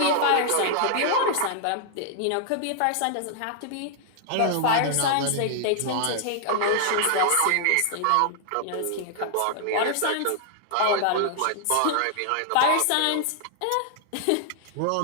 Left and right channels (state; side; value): different; both; correlation 0.00